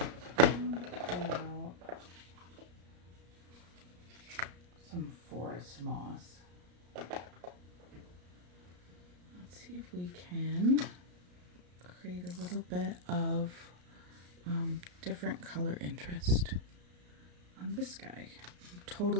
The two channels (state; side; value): late; left; 34 ms